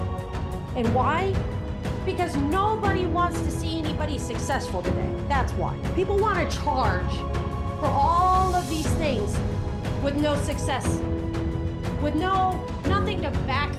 And why? Because nobody wants to see anybody successful today. That's why. People want to charge for all of these things with no success, with nothing to back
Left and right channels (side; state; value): both; identical; correlation 1.00